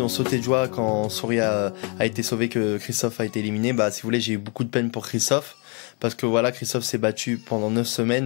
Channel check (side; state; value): right; quieter; 35.4 dB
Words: ont sauté de joie quand Soria a été sauvé, que Christophe a été éliminé, bah si vous voulez, j'ai eu beaucoup de peine pour Christophe parce que voilà, Christophe s'est battu pendant 9